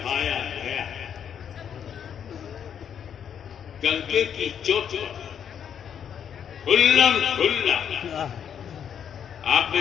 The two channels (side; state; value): right; quieter; 8.4 dB